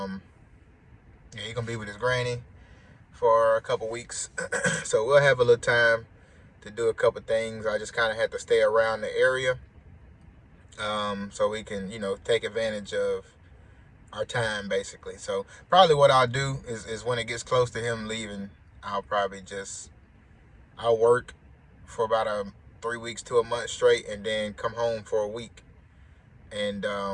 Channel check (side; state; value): both; identical; correlation 1.00